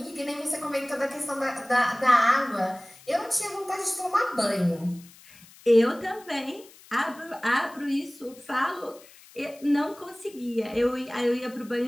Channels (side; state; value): left; noise; hiss, 23 dB below the sound